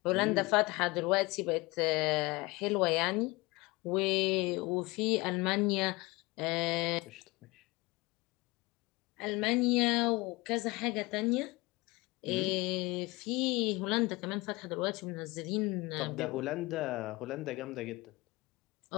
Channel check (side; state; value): right; quieter; 22.9 dB